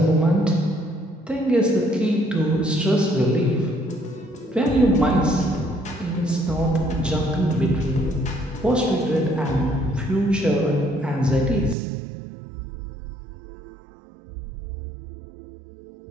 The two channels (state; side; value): drops out; left; at 11.8 s